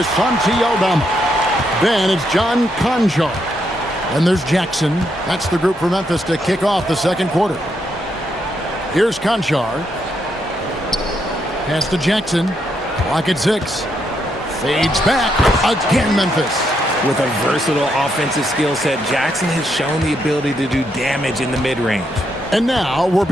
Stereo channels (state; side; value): normal; both; correlation 0.78